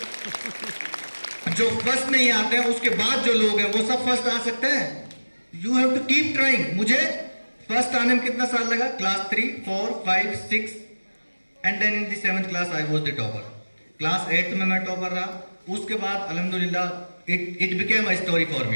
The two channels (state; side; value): inverted; both; correlation -1.00